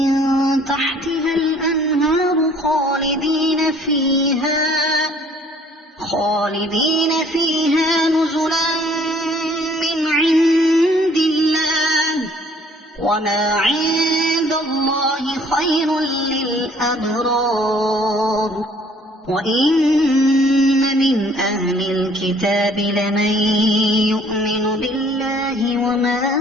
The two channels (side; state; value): both; normal; correlation 0.57